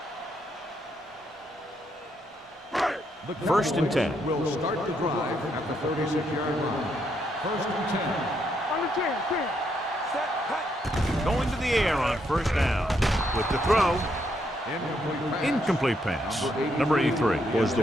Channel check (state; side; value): normal; both; correlation 0.76